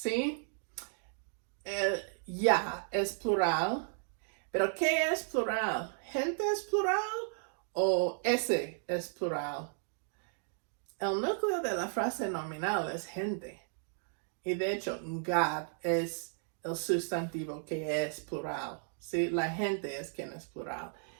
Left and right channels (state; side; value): silent; left; digital silence